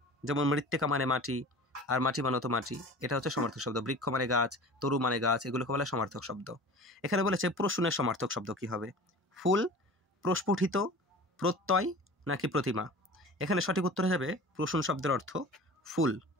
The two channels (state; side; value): normal; both; correlation 0.39